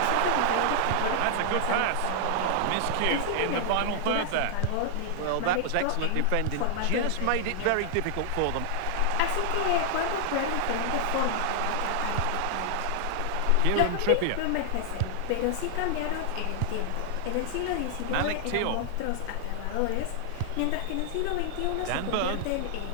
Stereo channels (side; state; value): both; different; correlation 0.00